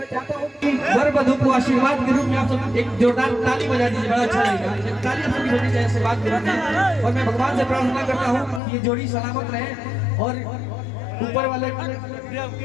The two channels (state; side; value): drops out; right; at 8.6 s